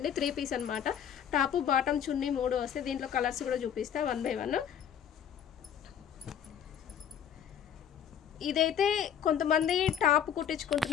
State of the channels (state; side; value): quieter; right; 8.9 dB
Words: 3 పీస్ అనమాట. టాపు బాటమ్ చున్నీ 3 వస్తాయి. దీంట్లో కలర్స్ కూడా చూపిస్తా 1 బై 1. ఇదైతే కొంతమంది టాప్